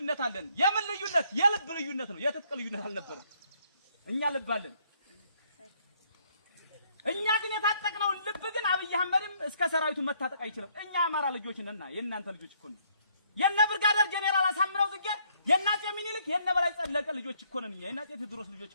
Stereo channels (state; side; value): inverted; both; correlation -0.67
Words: አለን። የምን ልዩነት? የልብ ልዩነት ነው። የትጥቅ ልዩነት አልነበረም። እኛ ልብ አለን። እኛ ግን የታጠቅነው ልብ ግን አብይ አህመድም እስከ ሰራዊቱ መታጠቅ አይችልም። እኛ አማራ ልጆች ነንና የእናንተ ልጆች እኮ ነን። የነ ብርጋዴር ጄኔራል አሳምነው ጽጌ የናጤ ሚኒልክ የነ በላይ ጸለቀ ልጆች እኮ ነን። እኛ የናጤ ቴዎድሮስ ልጆች